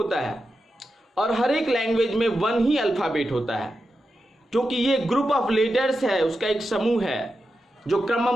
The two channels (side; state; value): both; normal; correlation 0.89